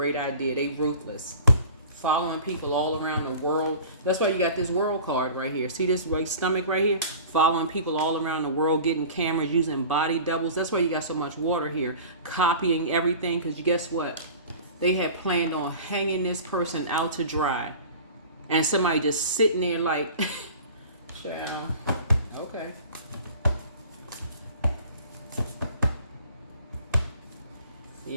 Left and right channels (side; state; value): both; inverted; correlation -0.41